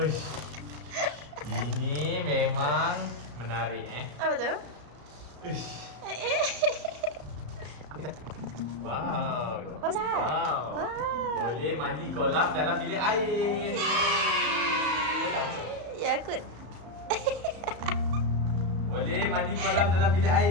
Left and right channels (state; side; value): late; left; 34 ms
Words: Ini memang menarik Apa tu? Uish. Wow. Besar. Wow. Wow. Boleh mandi kolam dalam bilik air. Ya, aku. Boleh mandi kolam dalam bilik